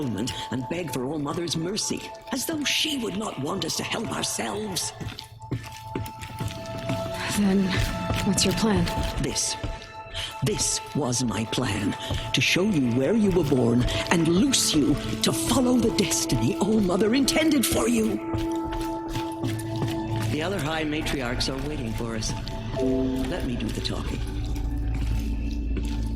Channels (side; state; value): both; identical; correlation 1.00